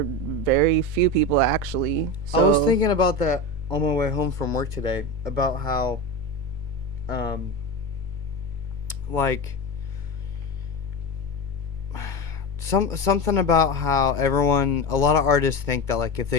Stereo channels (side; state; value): left; late; 2.2 ms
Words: very few people actually. So, I was thinking about that on my way home from work today, about how, like, something about how a lot of artists think that, like, if